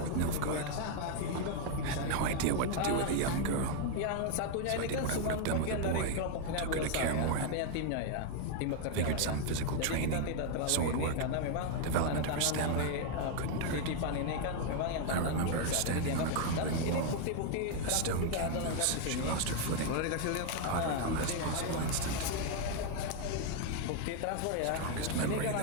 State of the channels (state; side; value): different; both; correlation 0.00